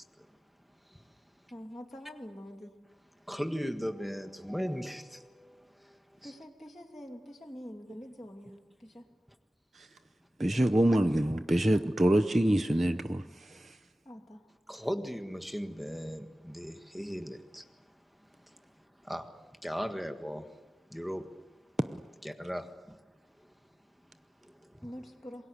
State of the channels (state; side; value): normal; both; correlation 0.96